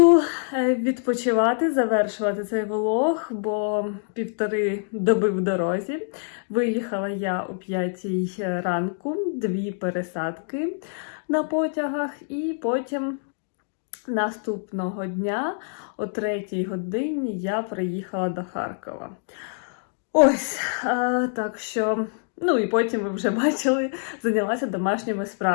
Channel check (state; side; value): silent; right; digital silence